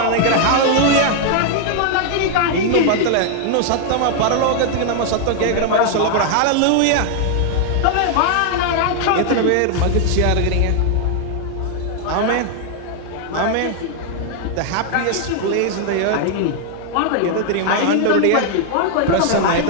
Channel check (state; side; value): different; both; correlation 0.00